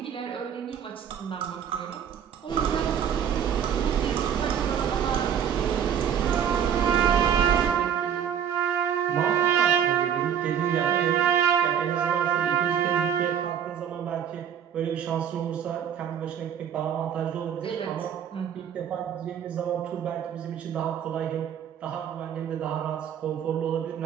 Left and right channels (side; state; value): left; quieter; 8.7 dB